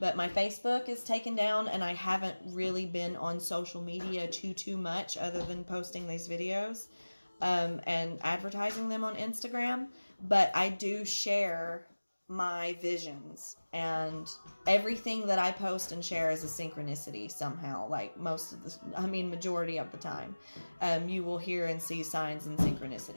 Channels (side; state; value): both; inverted; correlation -1.00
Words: my Facebook is taken down, and I haven't really been on social media too much other than posting these videos and advertising them on Instagram. But I do share my visions, and everything that I post and share is a synchronicity somehow, like majority of the time. You will hear and see signs and